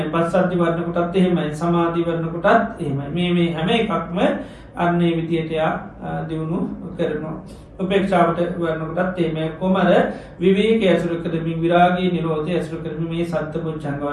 පස්සද්ධි වර්ණ කොටත් එහෙමයි සමාධි වර්ණ කොටත් එහෙමයි මේ හැම එකක්ම අන්නේ විදියට දියුණු කරනවා උපේක්ෂාවට වර්ණ කොටත් එහෙමයි කොමර විවේකයේ ඇසුරු කරමින් විරාගී නිරෝධය ඇසුරු කරමින් මේ සත්පුරුෂංග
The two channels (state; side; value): identical; both; correlation 1.00